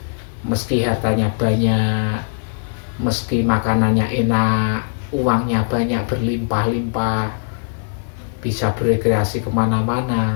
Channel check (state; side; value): silent; right; 57 dB below the other